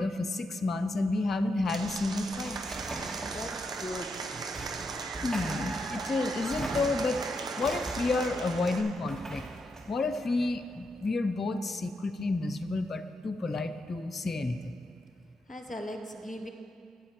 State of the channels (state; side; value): normal; both; correlation 0.82